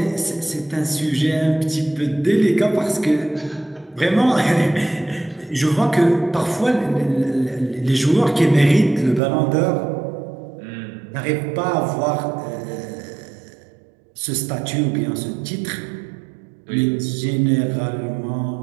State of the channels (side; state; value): left; drops out; at 9.2 s